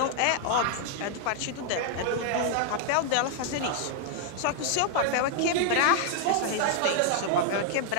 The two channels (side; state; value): both; different; correlation 0.00